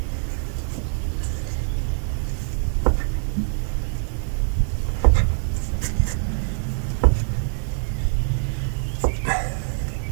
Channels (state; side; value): silent; left; digital silence